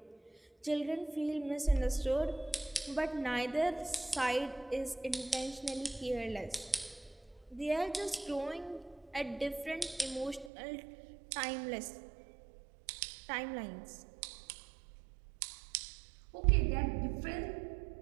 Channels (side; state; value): left; drops out; at 10.5 s